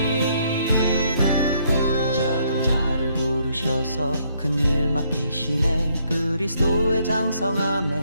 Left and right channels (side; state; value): both; inverted; correlation -0.70